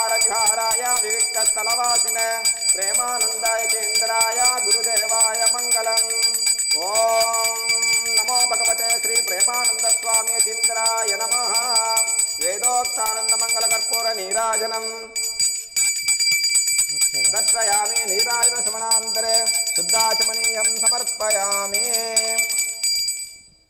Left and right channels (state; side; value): identical; both; correlation 1.00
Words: విహారాయ వివిక్త స్థలవాసినే ప్రేమానంద యతీంద్రాయ గురుదేవాయ మంగళం. ఓం నమో భగవతే శ్రీ ప్రేమానంద స్వామి యతీంద్రాయ నమః. వేదోక్తానంద మంగళ కర్పూర నీరాజనం దర్శయామి. నీరాజన శ్రవణాంతరే శుద్ధాచమనీయం సమర్పయామి.